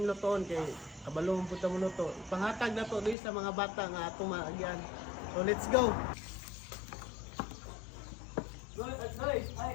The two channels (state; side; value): drops out; right; at 3.2 s